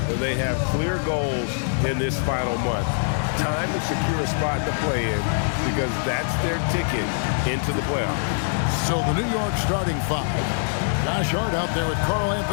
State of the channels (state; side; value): silent; right; digital silence